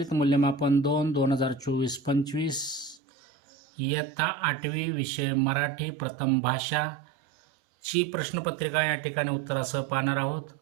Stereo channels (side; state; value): left; drops out; at 3.0 s